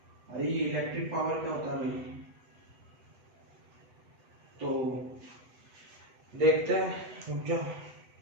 अरे इलेक्ट्रिक पावर क्या होता है भाई, तो देखते हैं, रुक जाओ।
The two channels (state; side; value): late; left; 8.0 ms